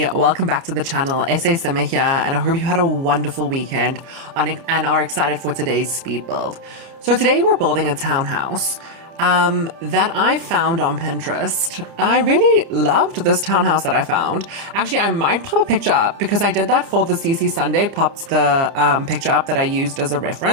welcome back to the channel. SASimmer here, and I hope you had a wonderful weekend and are excited for today's speed build. So today we're building a townhouse that I found on Pinterest. I really loved this townhouse that I found. Actually, I might pop a picture up because I did that for the CC Sunday, popped the picture up that I used as a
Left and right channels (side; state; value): left; late; 30 ms